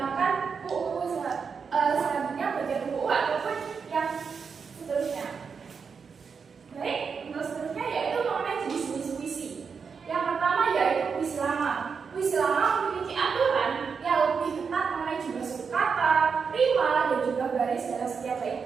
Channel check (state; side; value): quieter; left; 5.8 dB